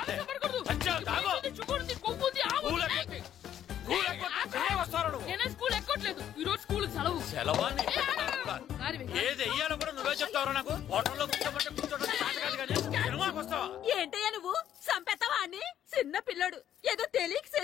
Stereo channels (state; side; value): quieter; right; 10.6 dB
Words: నేనే స్కూల్ ఎక్కట్లేదు, ఈ రోజు స్కూల్ సెలవు. సెలవా? ఏది వెయ్యాలో కూడా నువ్వే చెప్తావరా నాకు? హోటల్లో సినిమాకి వస్తావా? ఏంటయ్యా నువ్వు? సంపెత్తవా అని? చిన్న పిల్లడు ఏదో తెలియక